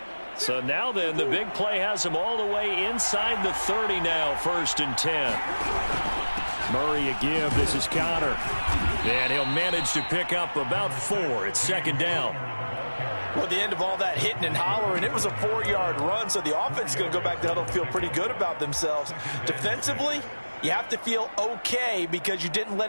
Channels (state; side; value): inverted; both; correlation -1.00